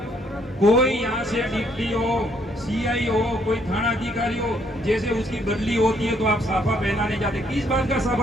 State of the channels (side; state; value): both; normal; correlation 0.69